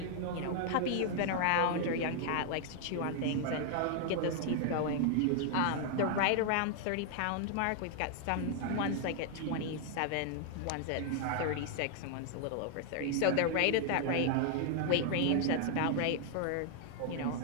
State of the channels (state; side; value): different; both; correlation 0.00